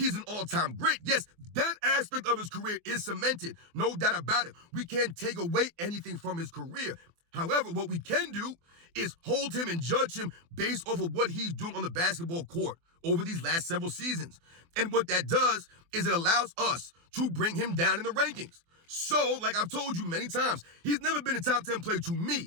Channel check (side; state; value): left; late; 24 ms